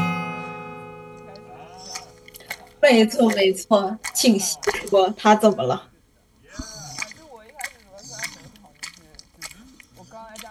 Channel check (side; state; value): both; identical; correlation 1.00